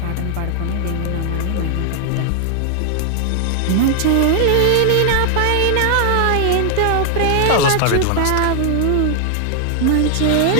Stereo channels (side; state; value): both; different; correlation 0.00